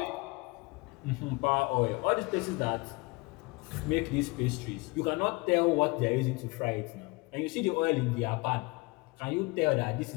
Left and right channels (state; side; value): quieter; right; 25.7 dB